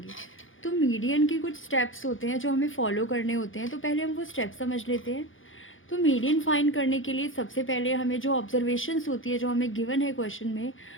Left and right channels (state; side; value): late; right; 0.58 ms